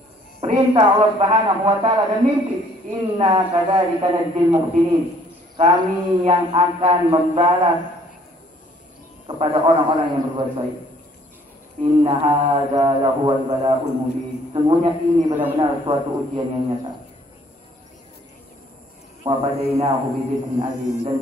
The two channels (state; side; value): normal; both; correlation 0.60